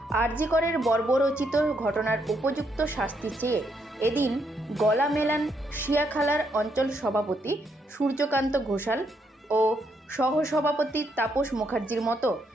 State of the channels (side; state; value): both; normal; correlation 0.76